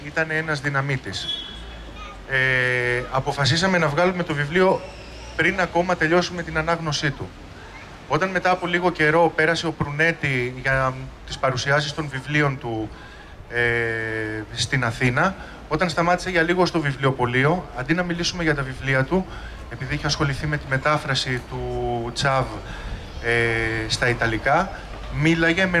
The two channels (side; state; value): both; identical; correlation 1.00